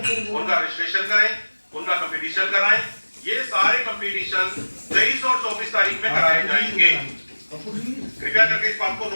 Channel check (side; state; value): both; inverted; correlation -1.00